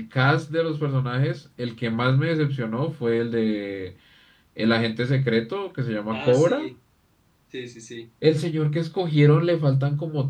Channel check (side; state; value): both; identical; correlation 1.00